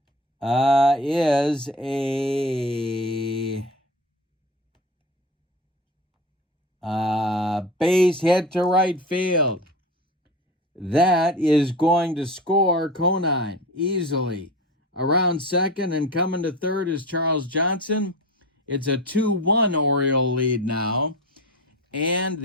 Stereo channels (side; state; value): both; normal; correlation 0.31